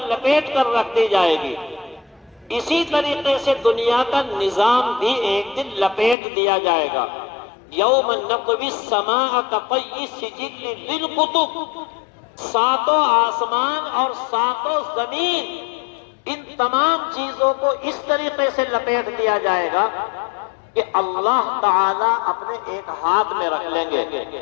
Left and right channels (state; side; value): drops out; right; at 6.2 s